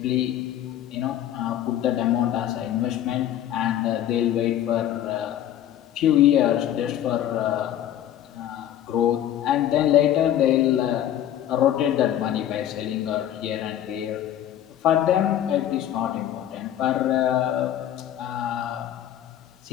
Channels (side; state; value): right; quieter; 11.4 dB